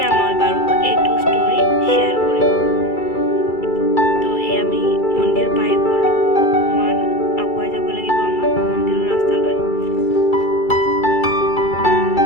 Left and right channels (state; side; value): late; right; 2.3 ms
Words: মই বাৰু এইটো ষ্টৰি শ্বেয়াৰ কৰিম। তো এই আমি মন্দিৰ পাই গ'লোঁ। অকণমান আগুৱাই যাব লাগিব আমাৰ মন্দিৰৰ ৰাস্তালৈ।